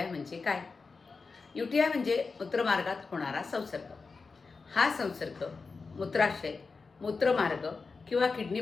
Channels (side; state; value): right; quieter; 4.5 dB